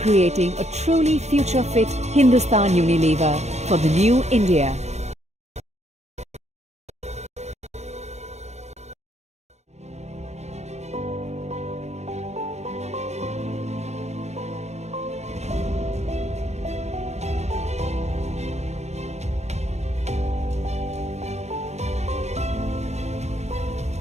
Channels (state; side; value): late; left; 0.32 ms